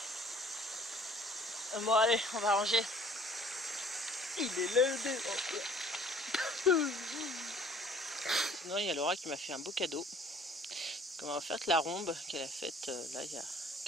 Bon allez, on va ranger. Il est levé. Sinon il y a Laura qui m'a fait un beau cadeau. Comme on va faire la rombe qu'elle a faite là il y a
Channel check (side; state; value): both; normal; correlation 0.53